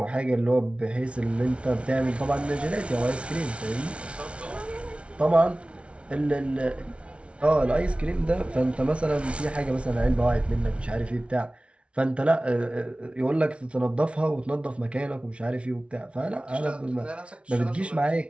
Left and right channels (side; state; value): left; late; 0.060 ms